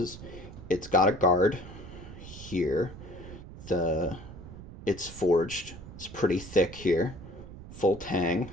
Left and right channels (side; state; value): right; noise; rumble, 14 dB below the sound